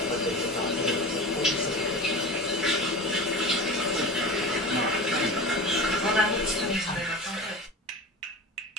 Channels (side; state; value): both; normal; correlation 0.31